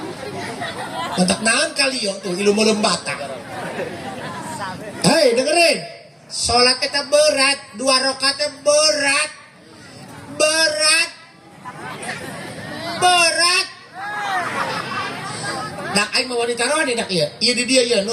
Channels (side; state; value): both; identical; correlation 1.00